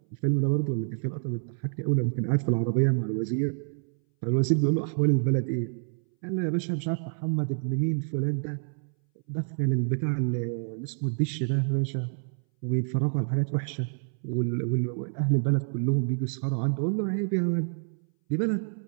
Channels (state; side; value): silent; left; 59 dB below the other